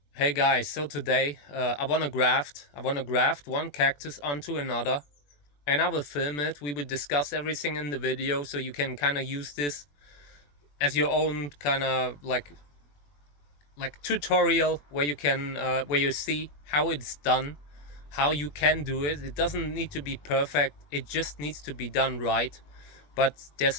Hey guys, so today I wanna graft one cactus onto another, and I will film it. We will discuss everything in the video, so you can kind of use this as your own kind of like tutorial where you can where you see how it's done, how you can do it. It doesn't need to be perfect. It just needs to be done right. But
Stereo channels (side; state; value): right; late; 21 ms